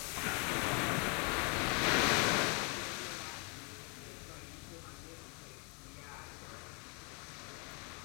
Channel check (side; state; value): right; quieter; 35.0 dB